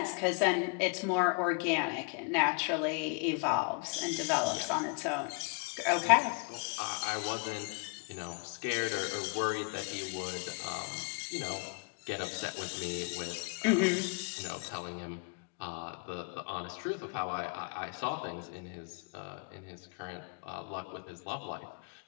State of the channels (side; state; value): right; quieter; 34.8 dB